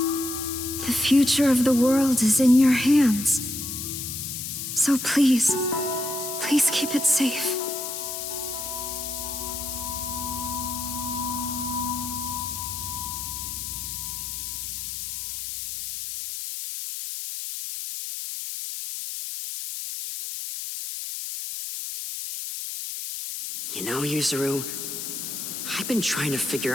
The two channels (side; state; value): left; noise; hiss, 5 dB below the sound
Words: The future of the world is in your hands. So please keep it safe. You know, Yuzuru, I've been trying to figure